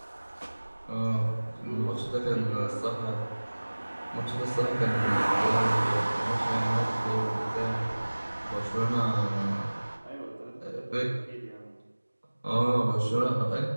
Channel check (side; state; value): both; inverted; correlation -1.00